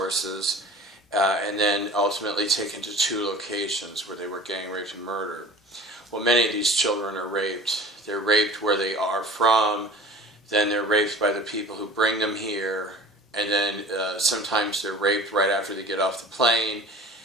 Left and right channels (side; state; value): both; normal; correlation 0.42